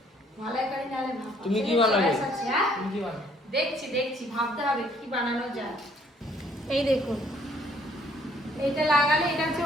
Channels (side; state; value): both; normal; correlation 0.62